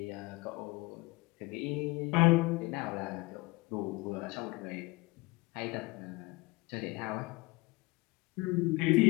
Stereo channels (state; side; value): quieter; right; 23.5 dB